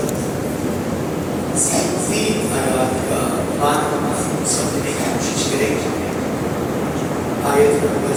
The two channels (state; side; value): identical; both; correlation 1.00